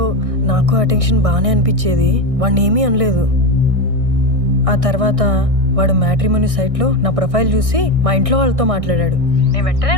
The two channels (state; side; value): late; left; 1.6 ms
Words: నాకు ఆ టెన్షన్ బాగానే అనిపించేది, వాడిని ఏమీ అనలేదు. ఆ తర్వాత వాడు మ్యాట్రిమోనీ సైట్లో నా ప్రొఫైల్ చూసి మా ఇంట్లో వాళ్ళతో మాట్లాడాడు. నేను వెంటనే